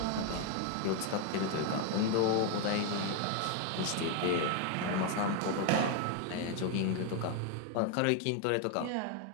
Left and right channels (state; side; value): different; both; correlation 0.01